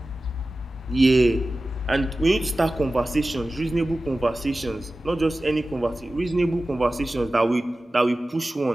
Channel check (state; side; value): normal; both; correlation 0.96